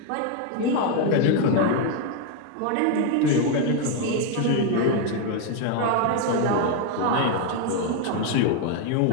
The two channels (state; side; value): different; both; correlation 0.01